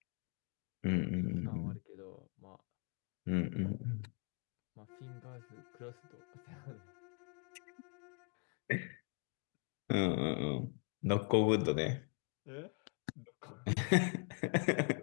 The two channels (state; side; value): quieter; right; 37.5 dB